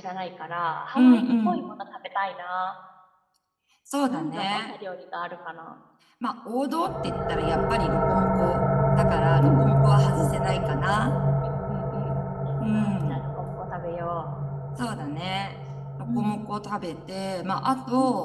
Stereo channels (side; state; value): both; identical; correlation 1.00